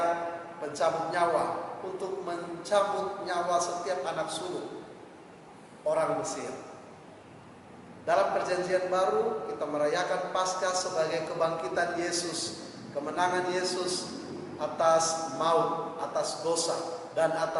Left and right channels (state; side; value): identical; both; correlation 1.00